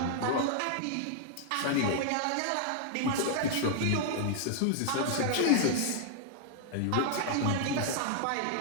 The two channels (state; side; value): different; both; correlation -0.01